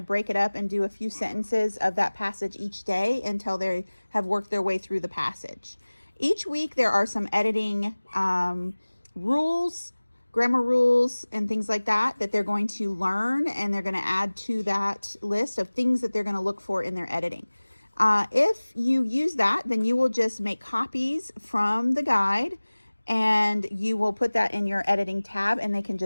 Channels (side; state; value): both; inverted; correlation -1.00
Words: break it up and do a few sentences of that passage each day until they have worked their way through the passage. Each week there are some editing rules, grammar rules, and things like that they're going to learn, and they're going to add to that list of things that they're going to look for in their editing. If you use that, then you will just make copies from the guide, and you will put that in your editing tab, and they can